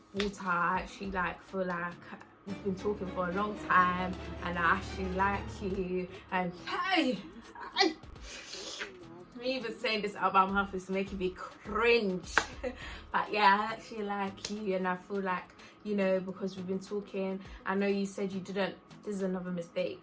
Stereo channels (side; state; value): both; identical; correlation 1.00